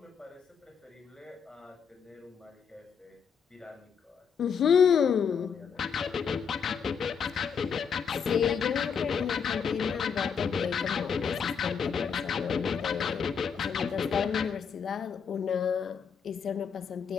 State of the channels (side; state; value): right; quieter; 6.7 dB